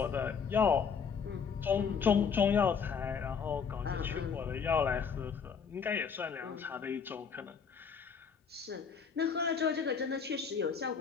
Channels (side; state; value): right; quieter; 6.3 dB